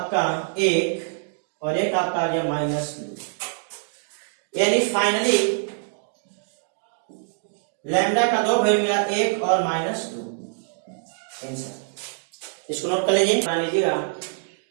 1 और एक आपका आ गया -2, यानी फाइनली लैम्डा का 2 वैल्यू मिला 1 और -2 आंसर। इसको नोट कर लीजिए, बना लीजिएगा।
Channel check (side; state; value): left; silent; digital silence